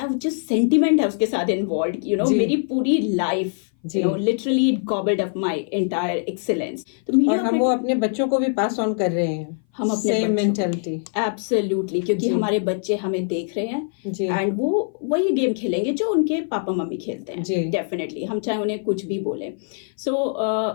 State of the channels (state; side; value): silent; right; 58 dB below the other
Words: जस्ट सेंटिमेंट है उसके साथ इन्वॉल्व, मेरी पूरी लाइफ जी। Literally it gobbled up my entire excellence. तो और मीडिया हम वो अपने बच्चों को भी पास ऑन कर रहे हैं, हम अपने सेम बच्चों मेंटालिटी। एब्सोल्युटली, क्योंकि जी। हमारे बच्चे हमें देख रहे हैं जी एंड वो वही गेम खेलेंगे जो उनके पापा मम्मी खेलते हैं। जी डेफिनेटली, हम चाहे उन्हें कुछ भी बोले। सो